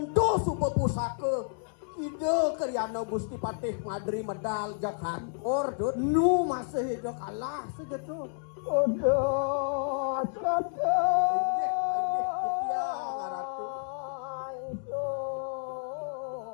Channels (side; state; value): right; silent; digital silence